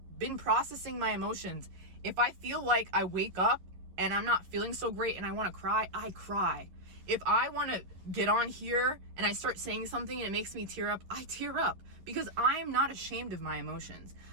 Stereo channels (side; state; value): left; late; 11 ms